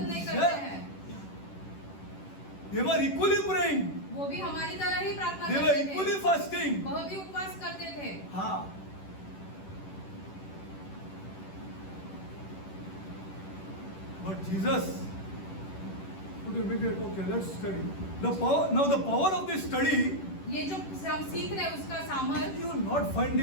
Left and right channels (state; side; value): late; right; 10 ms